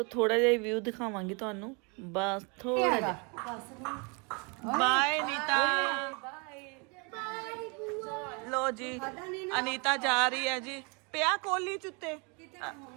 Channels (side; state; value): left; quieter; 32.4 dB